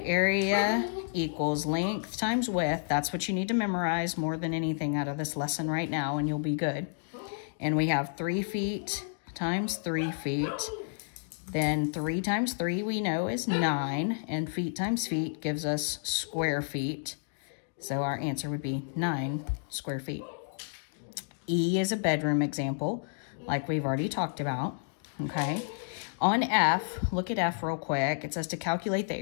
area equals length times width, that's what you need to memorize more than anything out of this lesson right now, and you'll be good. And we have 3 feet times 3 feet. Then 3 times 3 we know is 9, and feet times feet gives us square feet. So our answer would be 9 square feet. E is a bedroom example, like we've already talked about, okay? On F, look at F real quick. It says to calculate the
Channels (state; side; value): silent; right; digital silence